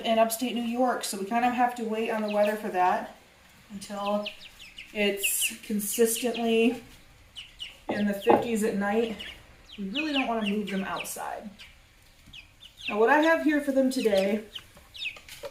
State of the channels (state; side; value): identical; both; correlation 1.00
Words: in upstate New York, so we kind of have to wait on the weather for that until it's consistently in the 50s at night. We really don't want to move them outside. Now, what I have here for them today,